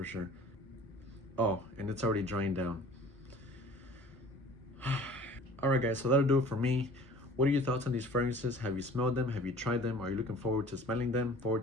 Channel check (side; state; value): both; normal; correlation 0.48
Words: sure. Oh, and it's already drying down. All right, guys, so that'll do it for me. What are your thoughts on these fragrances? Have you smelled them? Have you tried them? Are you looking forward to smelling them?